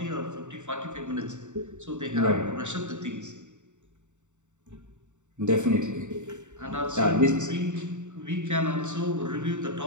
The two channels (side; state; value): left; late; 0.84 ms